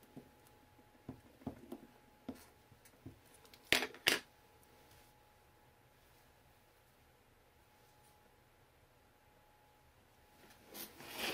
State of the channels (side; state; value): both; identical; correlation 1.00